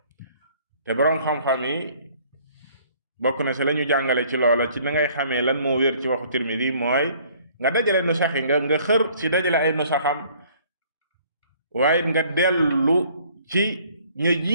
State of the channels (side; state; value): both; inverted; correlation -0.58